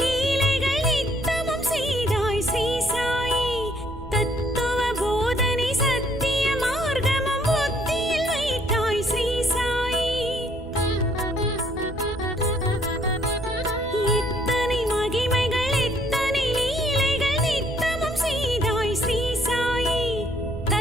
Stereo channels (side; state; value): right; noise; rumble, 16 dB below the sound